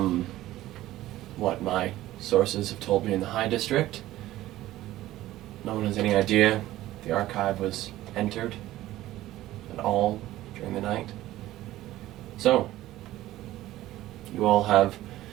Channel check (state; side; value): quieter; left; 15.4 dB